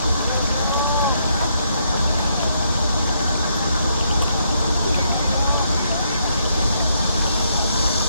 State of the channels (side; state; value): both; inverted; correlation -0.75